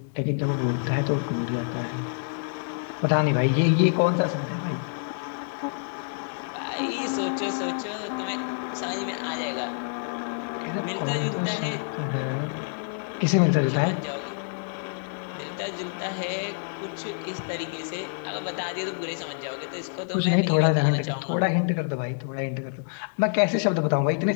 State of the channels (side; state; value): right; silent; 60 dB below the other